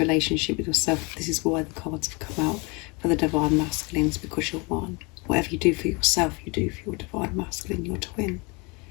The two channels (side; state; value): right; quieter; 29.2 dB